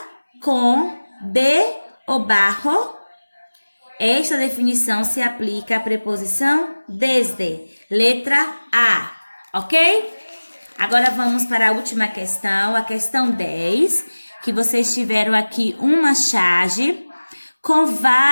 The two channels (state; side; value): inverted; both; correlation -1.00